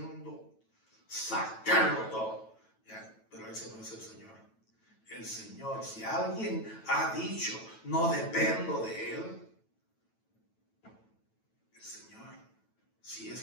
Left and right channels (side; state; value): right; late; 9.1 ms